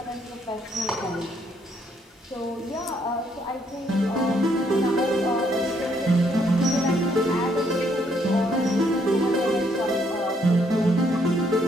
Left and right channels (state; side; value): normal; both; correlation 0.70